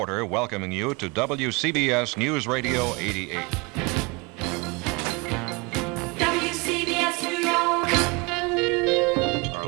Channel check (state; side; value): quieter; left; 27.5 dB